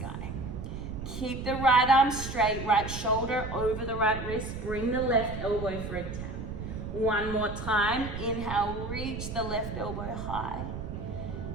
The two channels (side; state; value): right; noise; rumble, 7 dB below the sound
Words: Keep the right arm straight, right shoulder over the right wrist. Bring the left elbow for a tap. One more time. Inhale, reach the left elbow high.